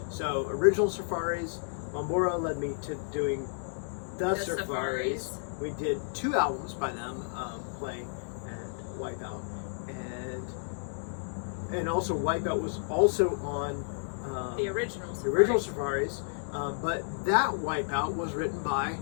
So original Surfaris, Bombora led me to doing the Surfaris. We did 2 albums by them, Play and Wipeout, and also Wipeout was also on the original Surfaris, but that Wipeout was written by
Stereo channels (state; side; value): silent; right; digital silence